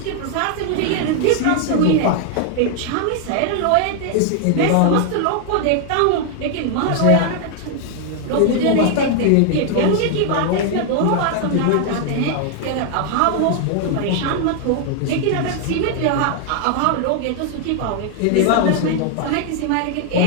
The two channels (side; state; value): both; different; correlation 0.00